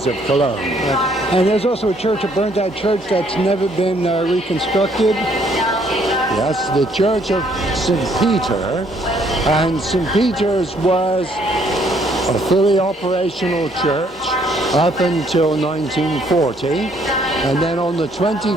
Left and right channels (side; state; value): both; normal; correlation 0.66